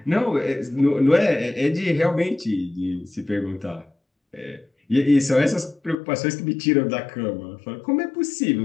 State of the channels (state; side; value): drops out; right; at 6.0 s